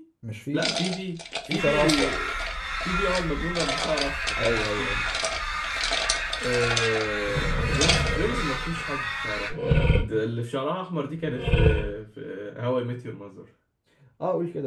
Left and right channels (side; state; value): both; identical; correlation 1.00